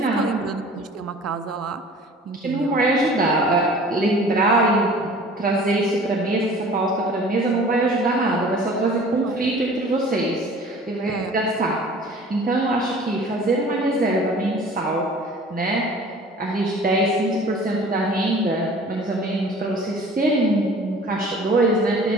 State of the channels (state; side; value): normal; both; correlation 0.46